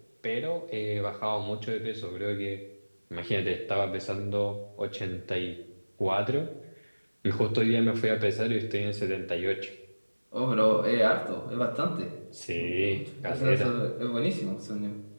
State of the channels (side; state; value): both; inverted; correlation -1.00